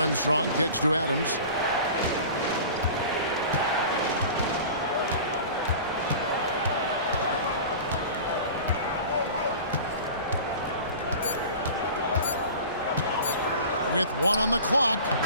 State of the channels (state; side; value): inverted; both; correlation -0.38